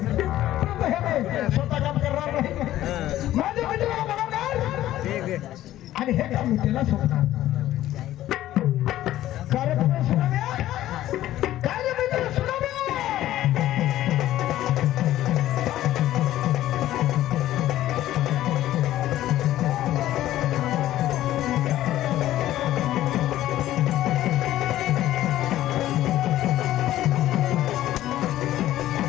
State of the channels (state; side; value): quieter; right; 13.9 dB